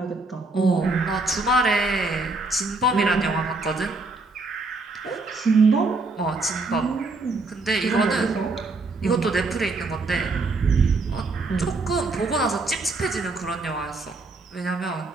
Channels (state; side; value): quieter; left; 3.4 dB